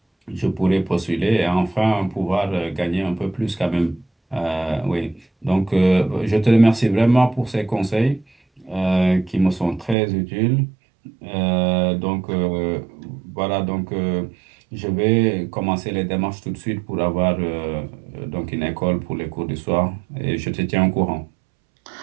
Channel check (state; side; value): drops out; left; at 10.0 s